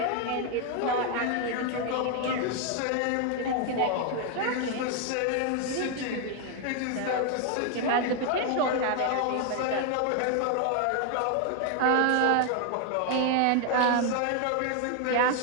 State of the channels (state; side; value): different; both; correlation 0.00